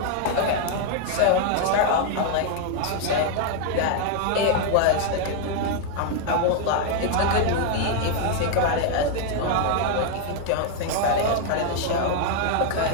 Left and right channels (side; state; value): both; different; correlation 0.00